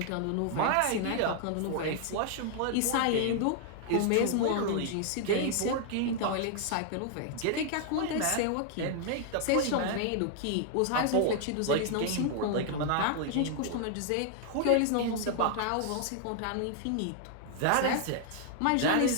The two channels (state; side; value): different; both; correlation 0.00